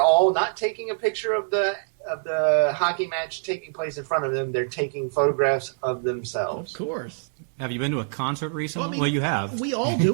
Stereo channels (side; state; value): left; silent; digital silence